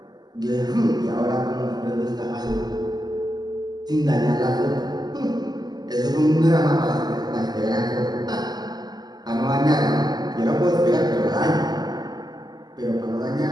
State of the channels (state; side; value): late; left; 0.20 ms